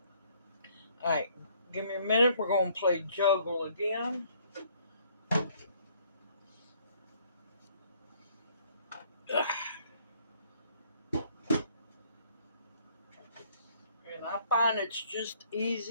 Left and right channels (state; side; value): inverted; both; correlation -0.63